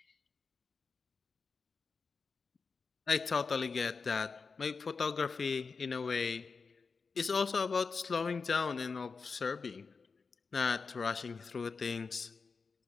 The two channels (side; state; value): right; quieter; 4.8 dB